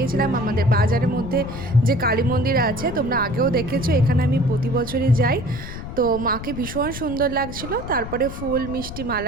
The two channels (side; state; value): left; noise; rumble, 9 dB below the sound